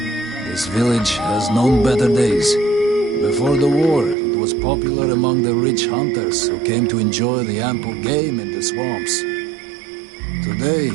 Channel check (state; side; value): drops out; left; at 4.2 s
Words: This village has known better days. Before the war, it was popular among the rich hunters who came to enjoy the ample game in the swamps. Today,